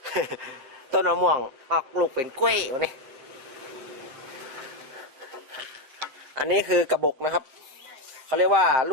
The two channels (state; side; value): late; left; 7.5 ms